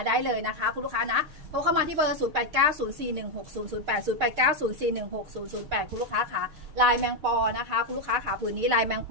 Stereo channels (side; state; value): left; late; 6.6 ms